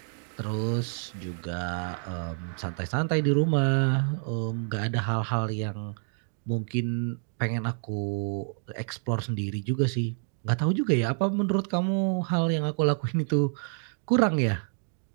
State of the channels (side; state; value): left; silent; 56 dB below the other